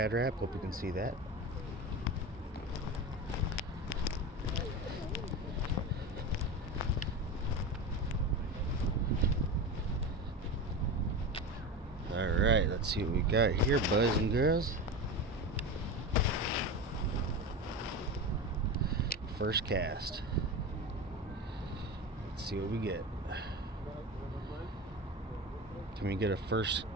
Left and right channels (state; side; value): normal; both; correlation 0.24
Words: wrap. Hope you can see that. Alright, let's see what we got here, boys and girls. First cast. Let's see what we get. Can we get a first